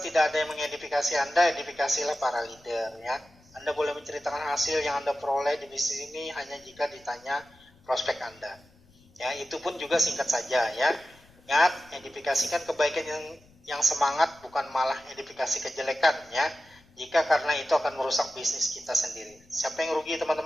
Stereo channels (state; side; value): noise; left; rumble, 29 dB below the sound